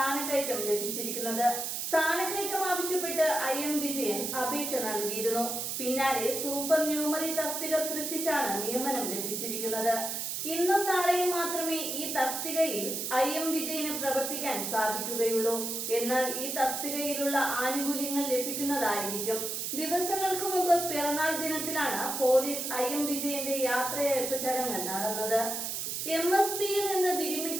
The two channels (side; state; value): right; noise; hiss, 3 dB below the sound